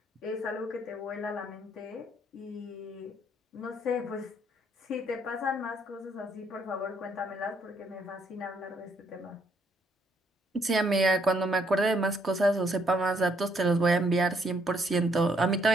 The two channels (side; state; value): both; normal; correlation 0.70